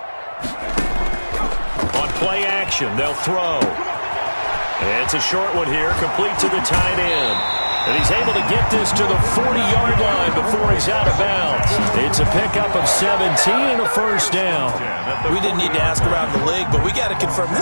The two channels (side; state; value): both; inverted; correlation -1.00